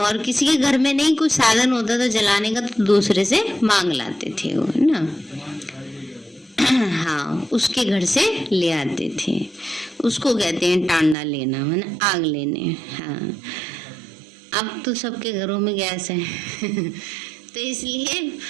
किसी के घर में नहीं कुछ साधन होता था जलाने का तो दूसरे से मांग लाते थे वो, है ना। हाँ, उसके घर से ले आते थे, उसको कहते हैं टांडा लेना, है ना, आग लेने। हाँ, अब तो सबके घरों में गैस है तो इसलिए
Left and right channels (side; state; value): left; drops out; at 11.2 s